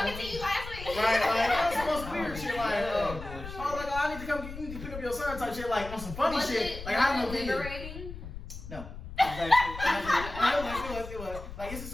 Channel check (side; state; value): left; noise; rumble, 11 dB below the sound